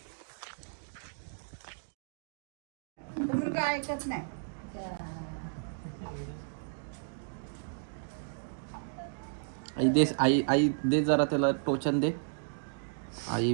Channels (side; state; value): left; silent; digital silence